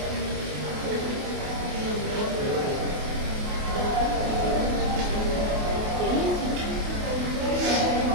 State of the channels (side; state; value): left; late; 28 ms